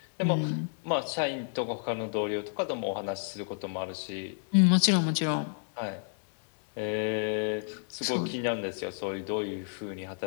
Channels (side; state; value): right; silent; 58 dB below the other